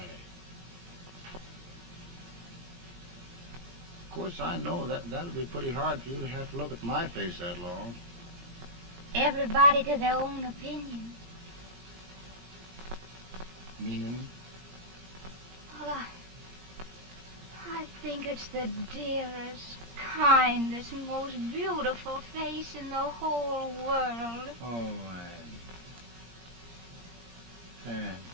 Of course, I know that'll be pretty hard for you to have to look at my face that long. Everybody to their own opinion. Meaning? Well, I think it's the dearest, kindest, most beautiful face in the whole world. Oh, Ann.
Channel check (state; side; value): late; left; 17 ms